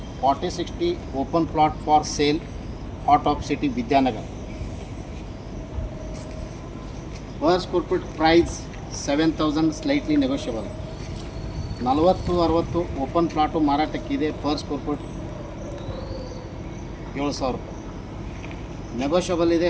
40-60 open plot for sale, heart of city Vidyanagara. Per square feet price 7,000, slightly negotiable. 40-60 open plot ಮಾರಾಟಕ್ಕಿದೆ. ಪರ್ ಸ್ಕ್ವೇರ್ ಫೀಟ್ 7,000 ರೂಪಾಯಿ. ನೆಗೋಷಿಯಬಲ್ ಇದೆ,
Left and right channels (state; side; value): identical; both; correlation 1.00